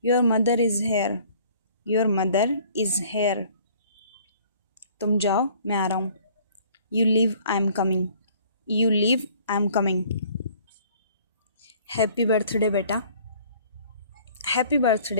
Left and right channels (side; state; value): both; inverted; correlation -0.55